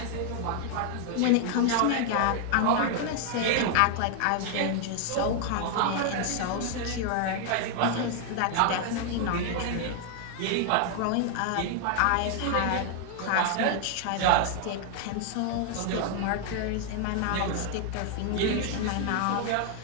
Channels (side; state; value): both; different; correlation 0.00